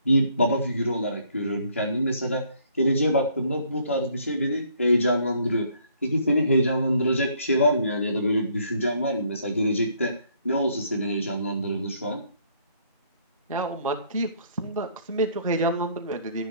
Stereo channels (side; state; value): both; inverted; correlation -0.65